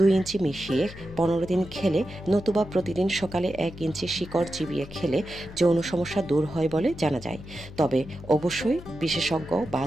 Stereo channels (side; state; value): left; noise; hum, 15 dB below the sound